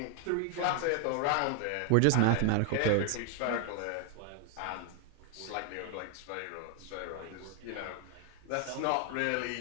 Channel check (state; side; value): different; both; correlation 0.00